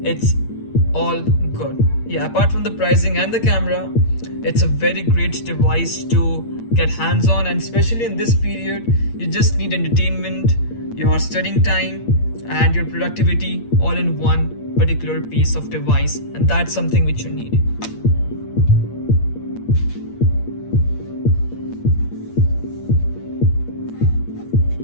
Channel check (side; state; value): right; late; 8.7 ms